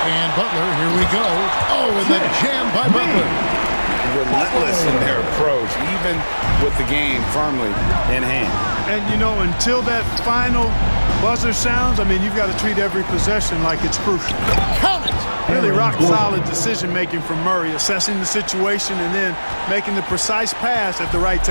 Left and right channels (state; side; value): inverted; both; correlation -1.00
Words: And Butler, here we go. Oh, and the jam by Butler. Relentless in their approach, even with the game firmly in hand. And, you know, until that final buzzer sounds, I mean, you've got to treat every possession like it's crucial. Count it! Really rock-solid decision-making from Murray, assessing the situation and then making the precise pass at the right